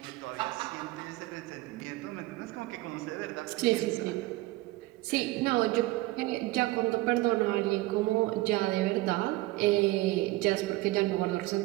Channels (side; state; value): left; quieter; 19.5 dB